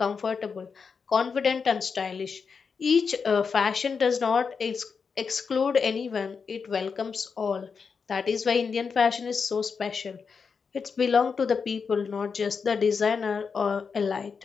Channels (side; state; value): right; quieter; 5.6 dB